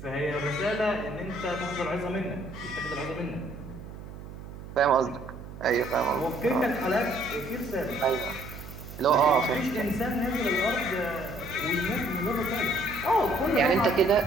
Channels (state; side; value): noise; right; hum, 13 dB below the sound